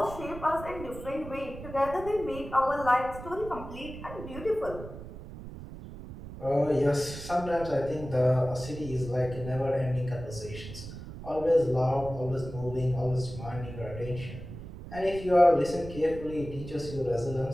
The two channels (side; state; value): right; noise; rumble, 12 dB below the sound